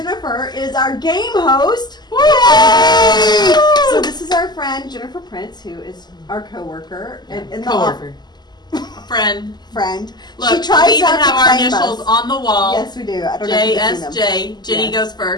is our game host. Yay! So this is our friend Jennifer Prince, who is our coworker and in coworker. Friend. Look, she tries we even not to have our claim initials us. on the wall. Yes, we do. I don't know if you can see them. JSJ. Jenny goes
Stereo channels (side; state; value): right; late; 0.21 ms